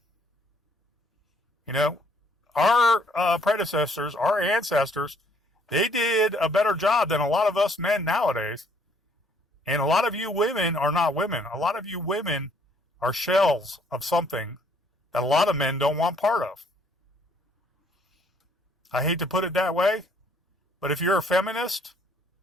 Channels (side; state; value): both; normal; correlation 0.64